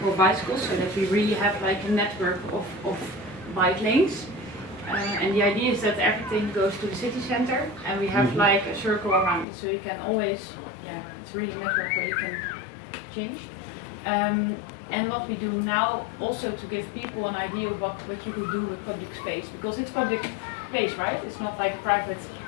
bicycles, so that we really have like a network of bike lanes. And the idea is that everything goes to the city center, and we have like a circle around it, so you can always, it's really a network where you can change. And what we do now, also to give people an idea of what you could do with public space, because it's public space, right? It's not like private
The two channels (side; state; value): right; drops out; at 9.5 s